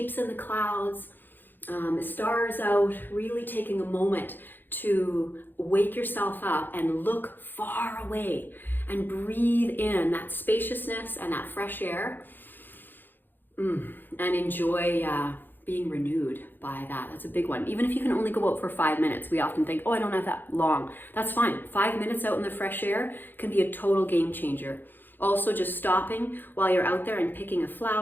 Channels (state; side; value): late; right; 0.093 ms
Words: in the clouds. Stars out, really taking a moment to wake yourself up and look far away and breathe in that spaciousness and that fresh air, and enjoy being renewed by that. That's a big one. Even if you can only go out for 5 minutes, we often think, oh, I don't have that long. That's fine. 5 minutes out in the fresh air can be a total game changer. Also, just stopping while you're out there and picking a